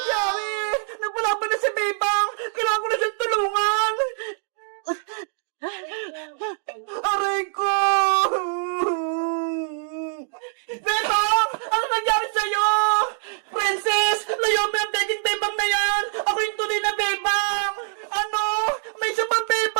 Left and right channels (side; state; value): left; silent; digital silence